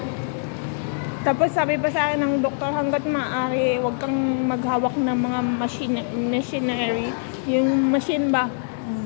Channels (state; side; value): silent; right; digital silence